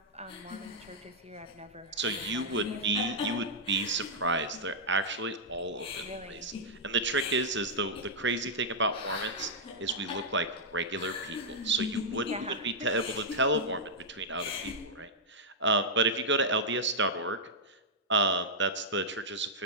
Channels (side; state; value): both; normal; correlation -0.07